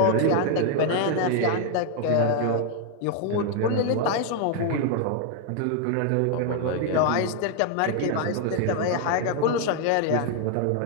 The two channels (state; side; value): different; both; correlation 0.00